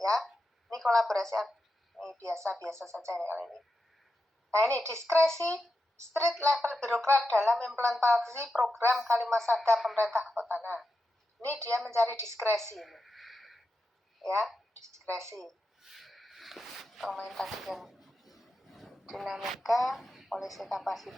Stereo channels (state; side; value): normal; both; correlation 0.88